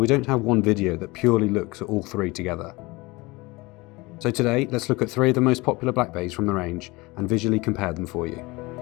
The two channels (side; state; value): right; quieter; 23.4 dB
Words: don't have one video that purely looks at all 3 together. So today, let's look at 3 of the most popular Black Bays from the range and visually compare them for you.